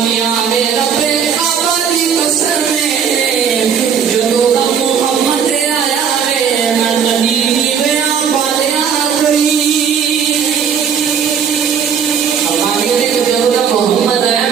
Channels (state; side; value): quieter; left; 7.4 dB